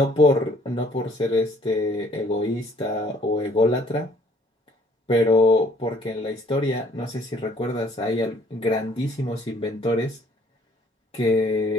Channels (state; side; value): normal; both; correlation 0.60